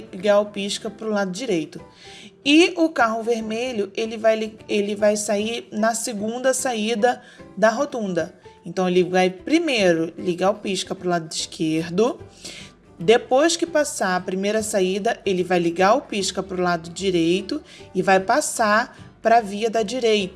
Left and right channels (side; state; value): both; identical; correlation 1.00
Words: o pisca para o lado direito. E o carro vermelho, ele vai sair na segunda saída da rotunda. Então, ele vai primeiro ligar o pisca para o lado esquerdo. Depois que passar a primeira saída, ele vai ligar o pisca para o lado direito e vai passar para a via da